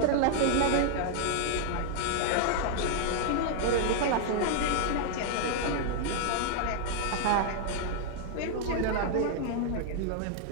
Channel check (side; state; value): both; different; correlation 0.00